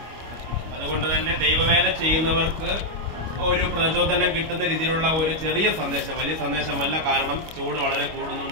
അതുകൊണ്ട് തന്നെ ദൈവവേല ചെയ്യുന്നവർക്ക് ഒരു പ്രചോദനം കിട്ടുന്ന രീതിയിലുള്ള ഒരു ചെറിയ സന്ദേശം, വലിയ സന്ദേശമല്ല. കാരണം ചൂട് വളരെ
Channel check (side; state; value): left; late; 25 ms